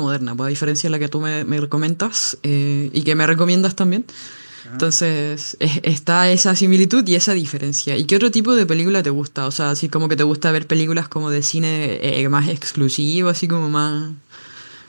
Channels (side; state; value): both; inverted; correlation -1.00